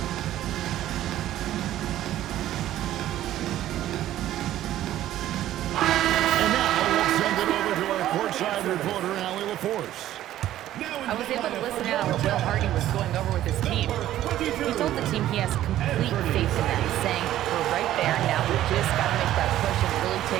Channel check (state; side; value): quieter; left; 13.2 dB